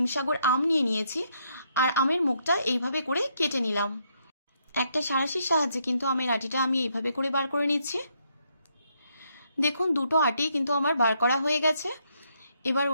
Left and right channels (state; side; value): inverted; both; correlation -0.75